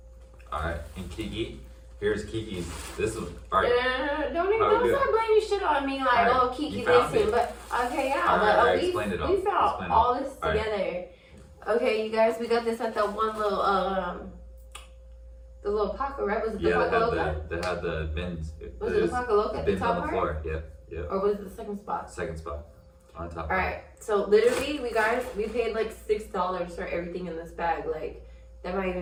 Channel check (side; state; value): both; identical; correlation 1.00